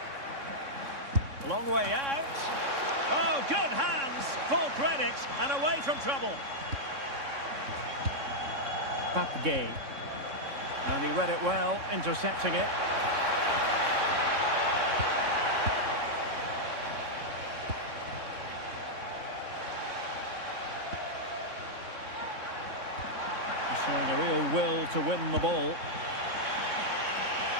Long way out. Oh, good hands. Full credit and away from trouble. Papgay. And he read it well, intercepting it. Showing a real will to win the ball.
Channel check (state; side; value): late; left; 3.6 ms